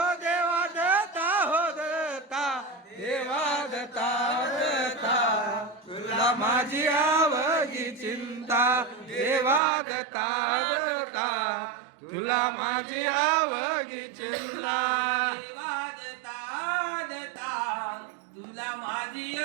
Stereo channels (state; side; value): drops out; left; at 9.6 s